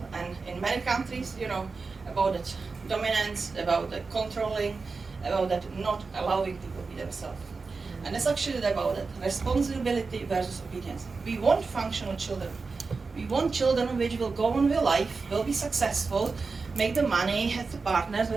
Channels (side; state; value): left; quieter; 4.4 dB